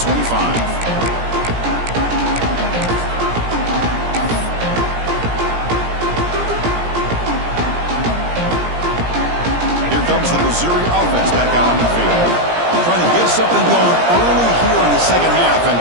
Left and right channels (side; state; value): left; late; 17 ms